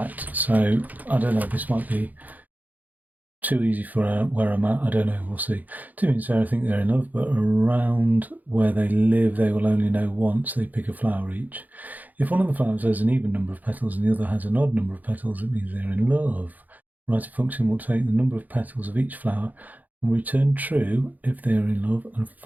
So I don't know, this might be too easy for where I'm at. I don't know, we'll see. Two means I think they're in love, but around where they live, they will only know once. They pick a flower each. If one of the flowers has an even number of petals and the other has an odd number of petals, it means they're in love. Write a function will take the number of petals of each flower and return true if they are in love and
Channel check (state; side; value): late; left; 0.081 ms